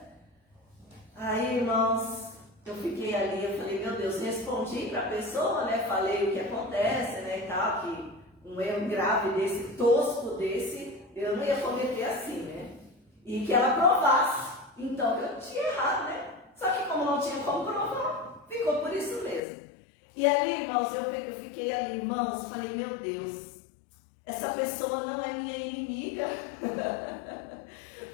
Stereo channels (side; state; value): right; drops out; at 19.4 s